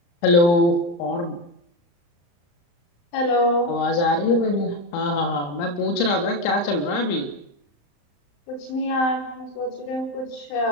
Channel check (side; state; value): right; late; 35 ms